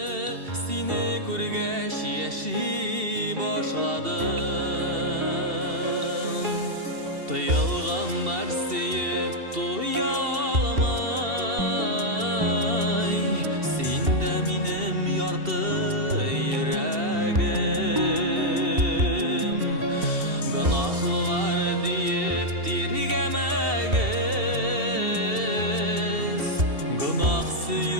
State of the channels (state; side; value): late; left; 2.7 ms